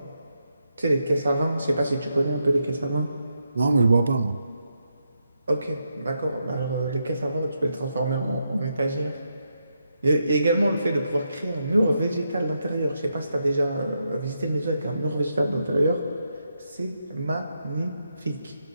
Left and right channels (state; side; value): inverted; both; correlation -0.83